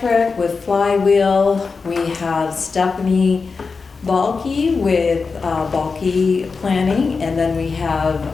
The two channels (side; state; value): right; quieter; 4.7 dB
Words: with Flywheel. We have Stephanie Balke with Balke Planning, and then we have